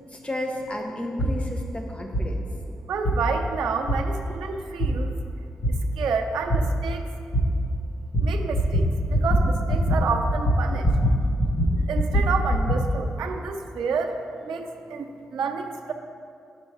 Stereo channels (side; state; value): both; normal; correlation 0.74